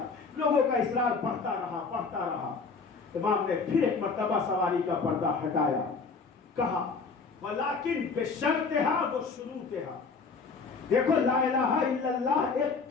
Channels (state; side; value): quieter; right; 4.7 dB